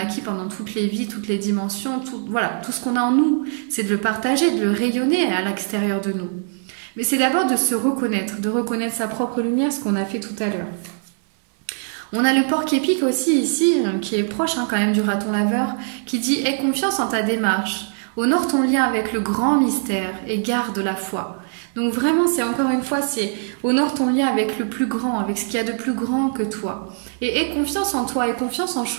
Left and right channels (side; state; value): left; silent; digital silence